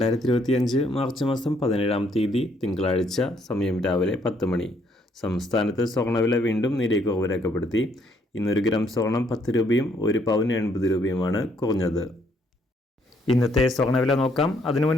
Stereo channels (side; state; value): both; normal; correlation 0.69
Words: മാർച്ച് മാസം 17-ാം തീയതി തിങ്കളാഴ്ച, സമയം രാവിലെ 10 മണി. സംസ്ഥാനത്ത് സ്വർണ്ണവില വീണ്ടും നേരിയ കുറവ് രേഖപ്പെടുത്തി. ഇന്ന് 1 ഗ്രാം സ്വർണം 10 രൂപയും 1 പവന് 80 രൂപയുമാണ് കുറഞ്ഞത്. ഇന്നത്തെ സ്വർണ്ണവില നോക്കാം. അതിനു